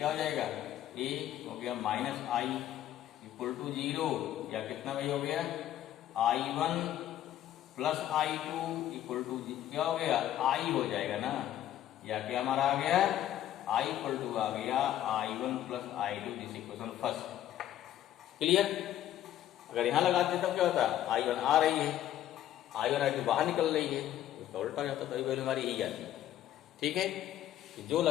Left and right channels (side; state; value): right; quieter; 12.2 dB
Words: हो जाएगा, ए हो गया माइनस आई इक्वल टू 0, या कितना भाई हो गया, I1 plus I2 equal to क्या हो गया, आई हो जाएगा ना, या क्या हमारा आ गया, I इक्वल टू आ गया I1 plus I2, this equation first. Clear. अगर यहां लगाते तब क्या होता, I1 आ रही है, I1 I2 बाहर निकल रही है, उसका उल्टा जाता, तो वैल्यू हमारी यही आती है। ठीक है, जो